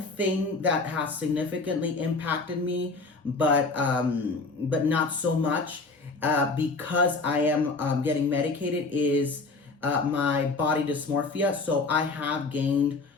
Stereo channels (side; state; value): right; quieter; 3.7 dB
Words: thing that has significantly impacted me, but not so much, because I am getting medicated, is my body dysmorphia. So I have gained